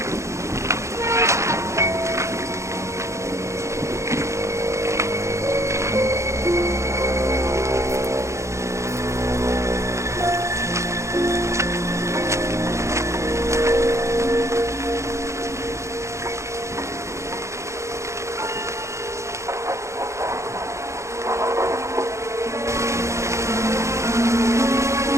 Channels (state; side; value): late; left; 0.14 ms